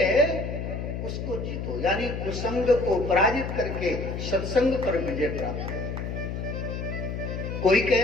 उसको जीतो, यानी कुसंग को पराजित करके सत्संग पर विजय प्राप्त। कोई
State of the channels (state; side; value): noise; left; hum, 5 dB below the sound